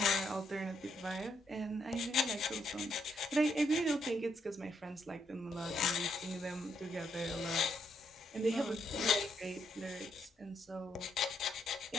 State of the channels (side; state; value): both; normal; correlation 0.76